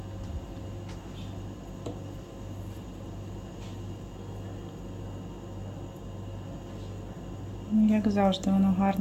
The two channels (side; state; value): both; identical; correlation 1.00